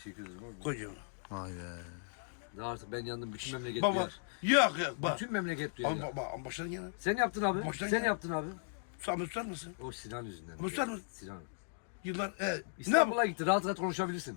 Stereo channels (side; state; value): right; silent; digital silence